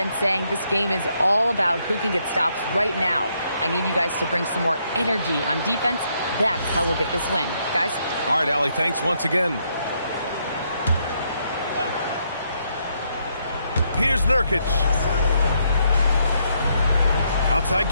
saying this game is all about who can get stops right now. I need you guys to bring some more energy on defense. That's how we'll get this win. Guys? All right, Allie, thanks once again. Here's Nurkic. Outside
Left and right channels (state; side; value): inverted; both; correlation -0.75